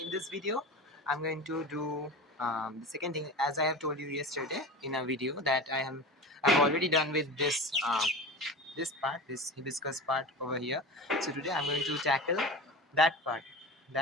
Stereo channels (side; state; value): both; normal; correlation 0.31